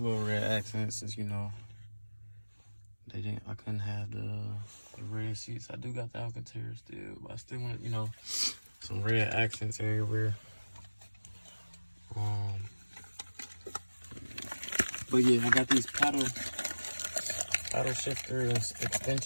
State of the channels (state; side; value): inverted; both; correlation -1.00